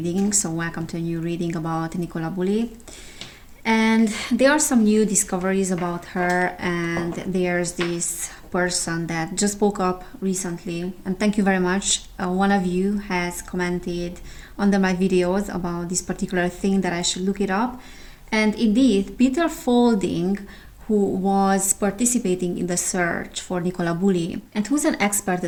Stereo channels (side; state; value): both; identical; correlation 1.00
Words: So, welcome to a new reading about Nicola Bulley. And there are some new discoveries about her. And there's this person that just woke up recently. And thank you very much. One of you has commented under my videos about this particular thing that I should look it up. And indeed, Peter Faulding, who was participating in the search for Nicola Bulley and who's an